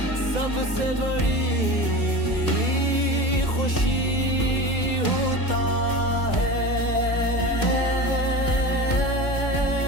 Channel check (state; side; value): late; right; 2.0 ms